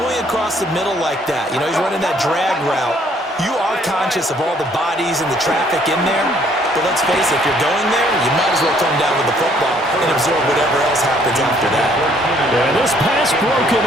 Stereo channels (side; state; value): both; normal; correlation 0.63